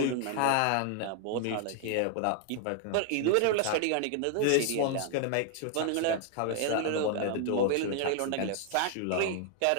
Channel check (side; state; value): both; different; correlation 0.00